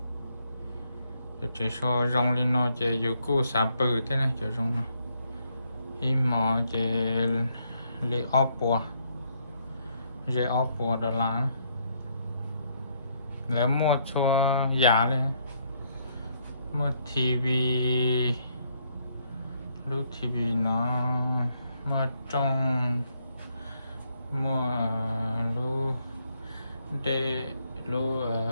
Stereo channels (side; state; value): both; inverted; correlation -0.73